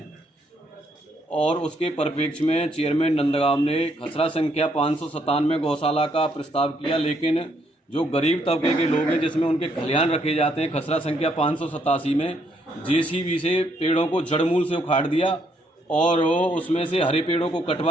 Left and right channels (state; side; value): normal; both; correlation 0.72